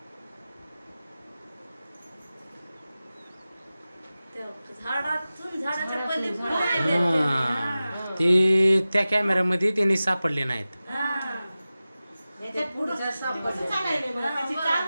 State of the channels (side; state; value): both; inverted; correlation -0.96